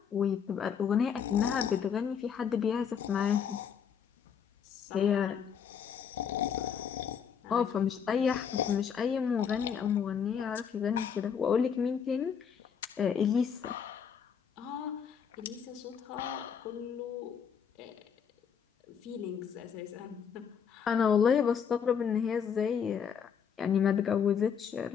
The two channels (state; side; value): quieter; right; 7.4 dB